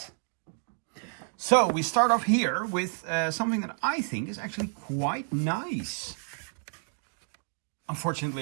So we start off here with something that I think is actually quite nice.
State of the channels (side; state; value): left; silent; 58 dB below the other